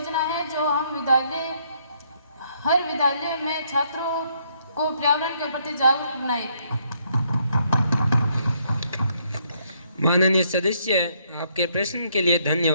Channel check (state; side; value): inverted; both; correlation -0.71